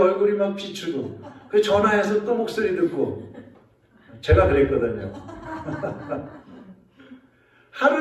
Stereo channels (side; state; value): both; identical; correlation 1.00